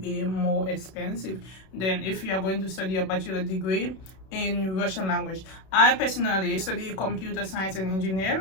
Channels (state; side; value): late; right; 32 ms